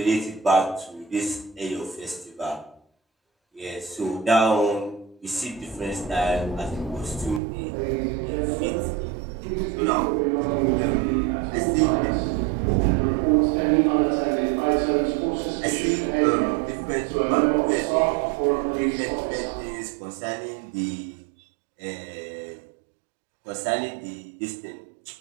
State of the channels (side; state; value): left; drops out; at 7.4 s